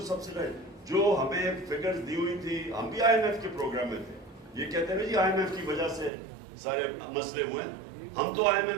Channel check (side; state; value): left; drops out; at 6.1 s